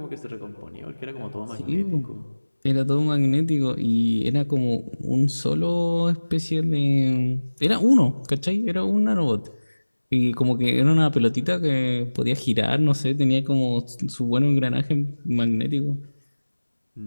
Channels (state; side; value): inverted; both; correlation -1.00